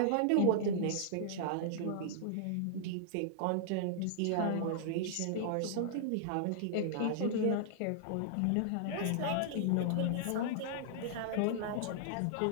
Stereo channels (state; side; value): different; both; correlation -0.01